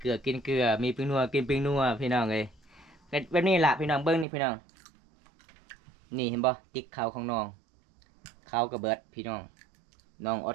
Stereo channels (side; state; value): left; drops out; at 4.2 s